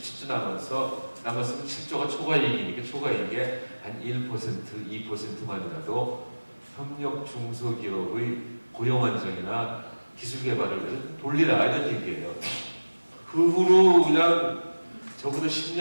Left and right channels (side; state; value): both; inverted; correlation -1.00